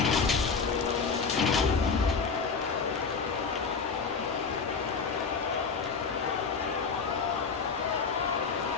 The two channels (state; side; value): quieter; right; 5.2 dB